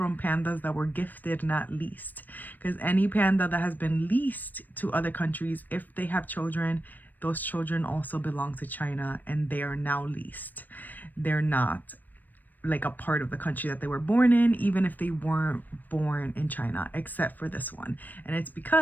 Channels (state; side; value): late; right; 0.087 ms